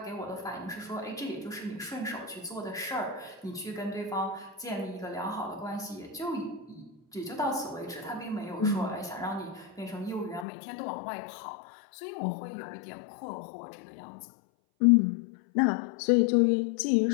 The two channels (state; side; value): drops out; right; at 10.5 s